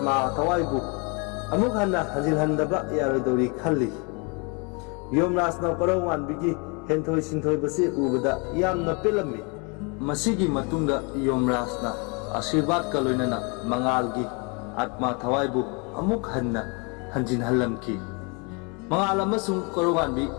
thawaibu amuk hanna hajilhandaba yarodori khalli. Yomraj na Koronganbigi henthoi sinthoi basi ubada yamna pelami. Masigi matungda Yomraj na Ashirwad ka loinana mangalgi atma thawaibu amuk hanna hanjinhallamki. Mangal amasung Koronganbi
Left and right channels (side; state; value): right; quieter; 32.2 dB